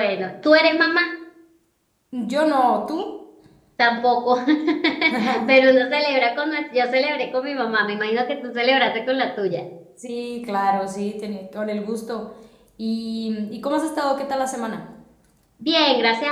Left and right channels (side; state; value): both; identical; correlation 1.00